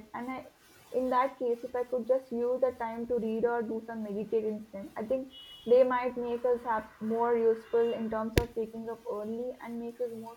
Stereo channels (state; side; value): identical; both; correlation 1.00